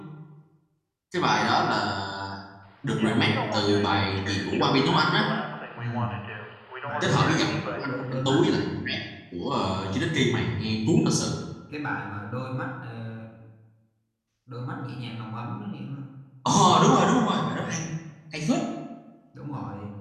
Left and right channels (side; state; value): both; identical; correlation 1.00